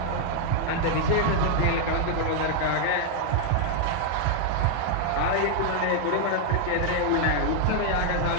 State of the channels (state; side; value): different; both; correlation 0.00